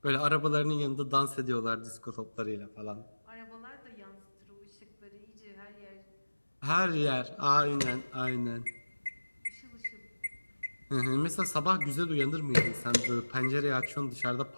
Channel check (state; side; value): inverted; both; correlation -1.00